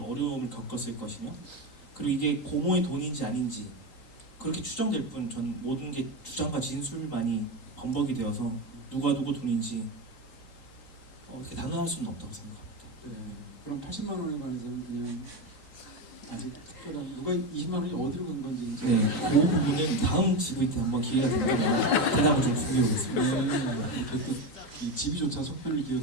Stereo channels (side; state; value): right; late; 3.8 ms